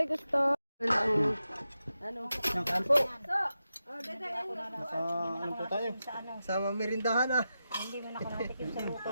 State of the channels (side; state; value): both; inverted; correlation -0.90